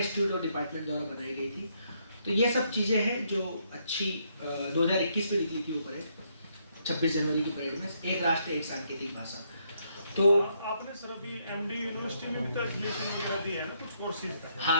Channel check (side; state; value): both; inverted; correlation -0.74